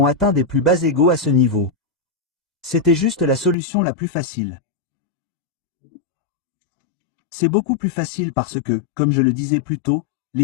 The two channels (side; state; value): right; drops out; at 3.6 s